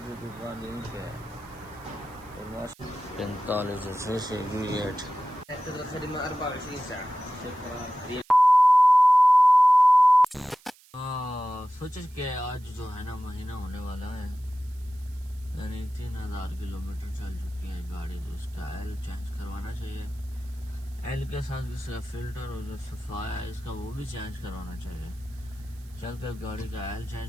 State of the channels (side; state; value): right; noise; hiss, 27 dB below the sound